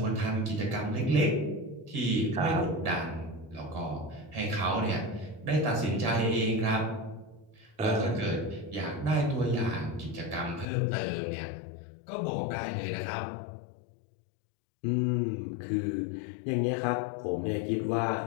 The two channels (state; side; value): drops out; right; at 10.7 s